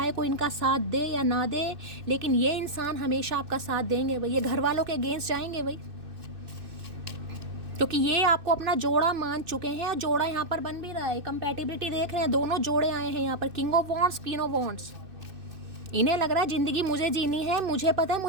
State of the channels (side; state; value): left; late; 2.6 ms